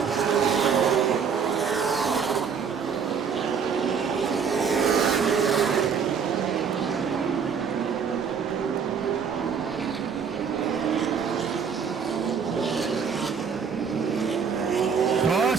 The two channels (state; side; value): quieter; left; 6.5 dB